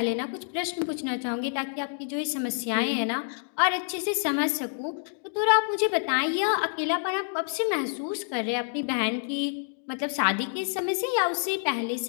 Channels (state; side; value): silent; right; digital silence